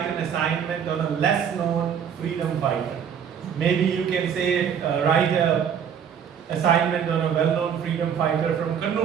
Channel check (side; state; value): left; quieter; 8.0 dB